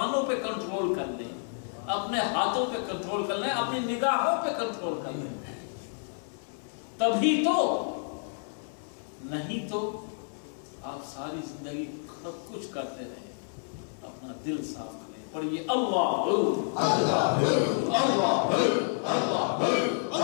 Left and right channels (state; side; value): silent; right; 58 dB below the other